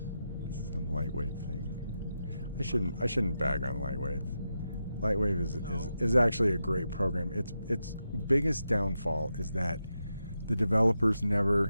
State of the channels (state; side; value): inverted; both; correlation -0.87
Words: It's some Lightwave thing. I shouldn't bag on Lightwave. Lightwave is actually a great program. Its biggest downfall is that the developers